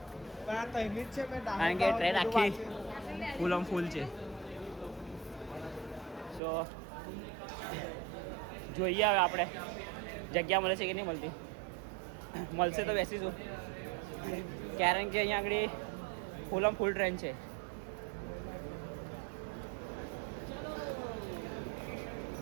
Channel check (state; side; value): drops out; left; at 6.4 s